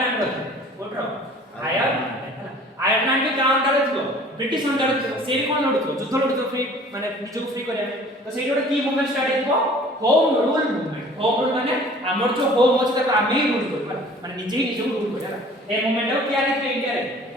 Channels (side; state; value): both; normal; correlation 0.49